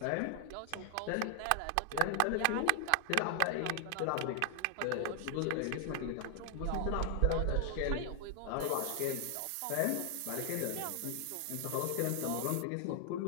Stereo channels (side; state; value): both; different; correlation 0.00